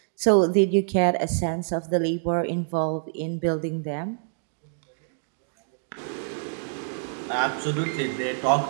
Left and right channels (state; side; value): silent; left; digital silence